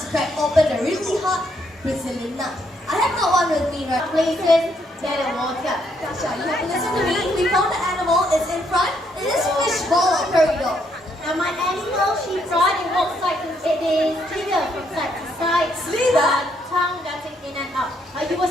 crack open a really hard Brazilian nut. I have got one with me right Places, dead and water. Tasha, you have to listen to me. We found the animal, it's in front. It is fishball or corridor. Now my animal, Shipra, it walks like it is slither from side to side. Slither? Tongue darting in and out. You were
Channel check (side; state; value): both; normal; correlation 0.73